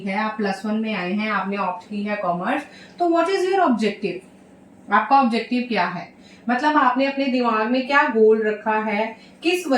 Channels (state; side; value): identical; both; correlation 1.00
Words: आप +1 में आए हैं, आपने ऑप्ट की है कॉमर्स, तो व्हाट इज योर ऑब्जेक्टिव? आपका ऑब्जेक्टिव क्या है? मतलब आपने अपने दिमाग में क्या गोल रखा है, किस